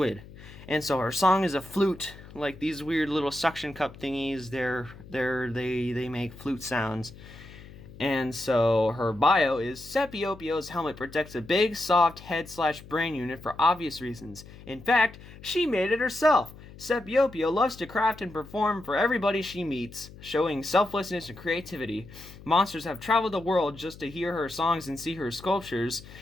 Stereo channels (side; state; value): left; noise; hum, 18 dB below the sound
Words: And so her song is a flute, like these weird little suction cup thingies. They make flute sounds. And so her bio is Scipio Pio's helmet protects a big, soft head/brain unit for obvious reasons. In fact, she made it herself. Scipio Pio loves to craft and perform for everybody she meets, showing selflessness and creativity. Monsters have traveled the world just to hear her songs and see her sculptures.